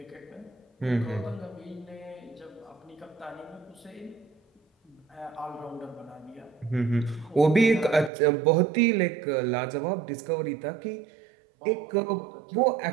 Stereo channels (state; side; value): drops out; left; at 8.1 s